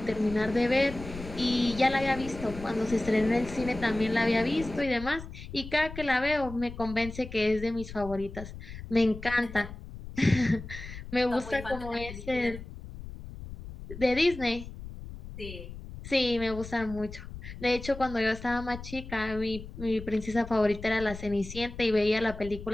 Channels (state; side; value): noise; left; rumble, 12 dB below the sound